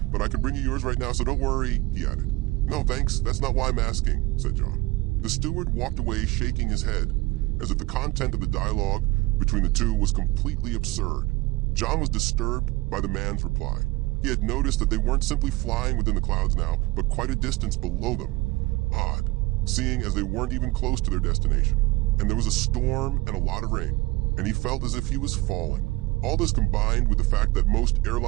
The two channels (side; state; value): left; quieter; 21.0 dB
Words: but I can bring you yours right now, so don't worry," he added. "No, thanks. That's not why I'm asking," said John. The steward walked away shaking his head, as if the content of the dialogue between the two was completely absurd. John was disturbed by the man's reply. He had noticed that they weren't simply flying within the clouds now, but quite a distance below them. Odd, seeing as they weren't even close to their destination. And there was a storm and a lot of rain, and he felt as if he was falling. All this combined with the fact that most